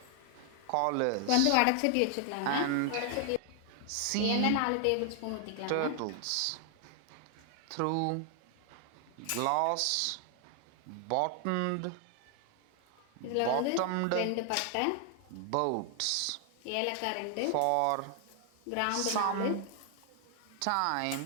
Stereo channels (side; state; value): both; different; correlation 0.00